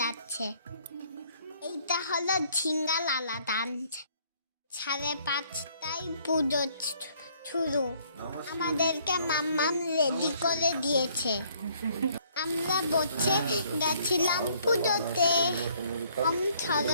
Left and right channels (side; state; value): both; inverted; correlation -0.63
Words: যাচ্ছে। এইটা হলো ঝিঙ্গা লালা ডান্স। 5:30টায় পুজো শুরু। আমাদেরকে মাম্মাম রেডি করে দিয়েছে। আমরা বসে গেছিলাম পুজোতে।